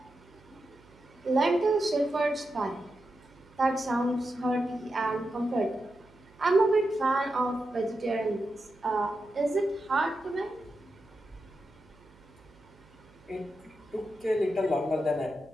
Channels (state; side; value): noise; right; hum, 27 dB below the sound